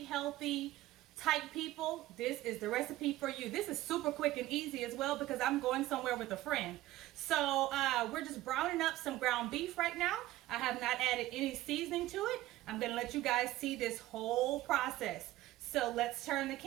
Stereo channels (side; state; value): left; quieter; 16.1 dB